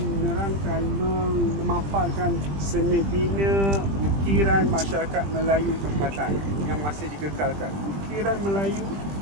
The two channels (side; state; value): left; late; 20 ms